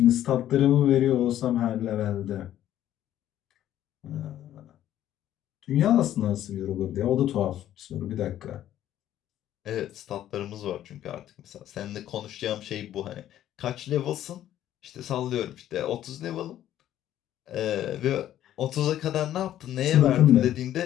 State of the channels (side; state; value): right; quieter; 12.1 dB